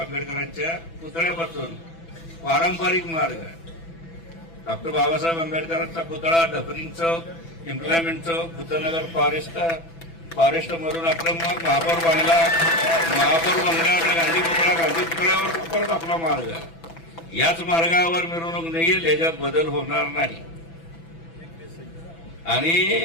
पुतळ्यापासून पारंपरिक मार्ग डॉक्टर बाबासाहेब आंबेडकरांचा पुतळा, डबरिंग चौक, इम्प्लॉयमेंट चौक, भूतनगर फॉरेस्ट मधून आपलं मग महापौर बंगल्यावर गांधी पुतळ्यावर परत आपला मार्ग. याच मार्गावर मिरवणूक निघेल, याच्यात बदल होणार नाही.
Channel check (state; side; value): late; right; 6.0 ms